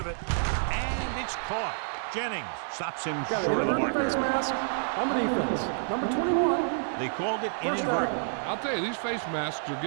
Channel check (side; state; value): left; silent; digital silence